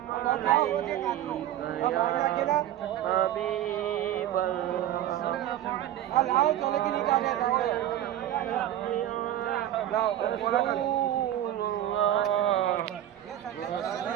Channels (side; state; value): left; quieter; 12.3 dB